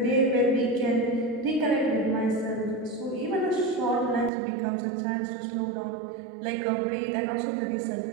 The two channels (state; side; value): drops out; left; at 4.3 s